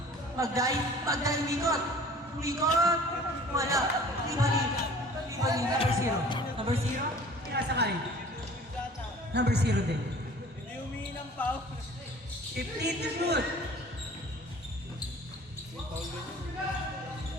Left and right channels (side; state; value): both; normal; correlation 0.48